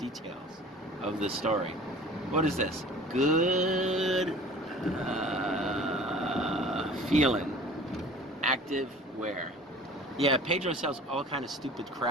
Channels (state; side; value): normal; both; correlation 0.45